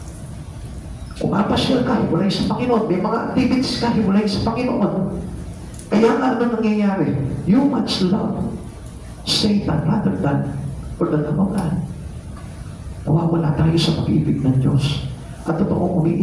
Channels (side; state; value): both; identical; correlation 1.00